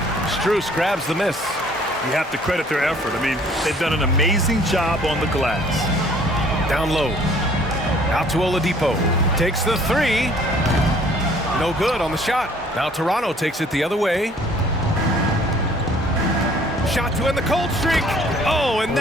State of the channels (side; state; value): both; normal; correlation 0.56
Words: Strus grabs the miss. You have to credit their effort. I mean, they've done an amazing job on the glass. Down low. Out to Oladipo. Takes the three. No good on the shot. Now Toronto takes it the other way. Shot to end the cold streak. Oh, and